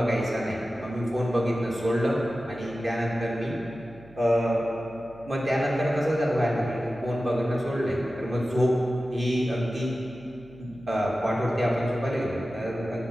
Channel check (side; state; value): right; noise; hum, 23 dB below the sound